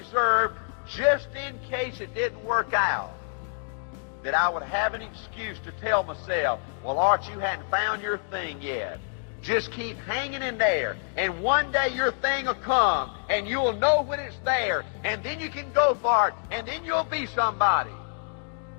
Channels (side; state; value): right; silent; digital silence